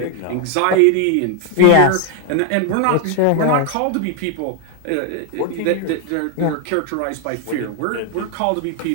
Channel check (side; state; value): both; different; correlation 0.00